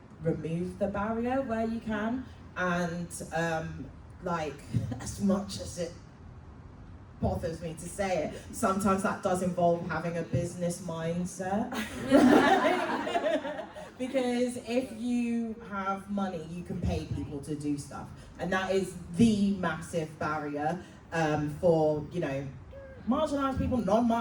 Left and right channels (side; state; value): both; identical; correlation 1.00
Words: remove the barrier where you can, and like, as much as it bothers me to say it, sometimes that does involve having a business mindset. Because if you have money, you can pay people to do stuff, and that is the massive barrier for, you know, marginalised people,